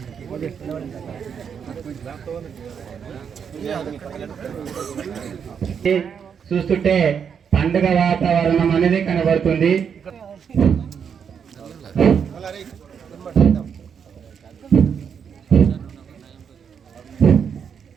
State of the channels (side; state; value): left; quieter; 7.2 dB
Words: ఓకే చూస్తుంటే పండుగ వాతావరణం అనేది కనబడుతుంది.